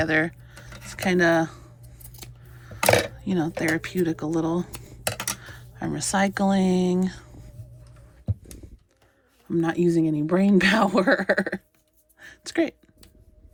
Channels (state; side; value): identical; both; correlation 1.00